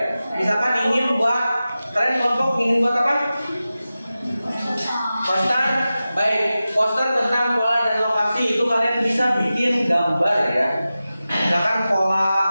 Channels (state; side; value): inverted; both; correlation -0.95